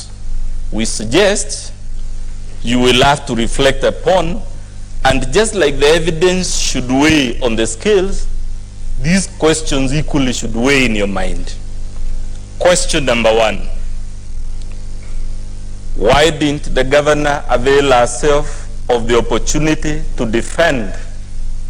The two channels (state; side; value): identical; both; correlation 1.00